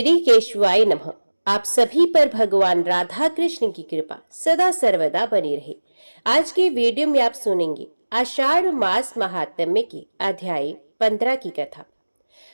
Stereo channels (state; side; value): inverted; both; correlation -1.00